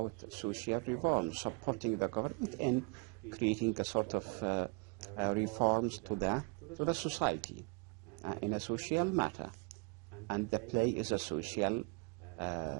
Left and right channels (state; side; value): quieter; left; 31.6 dB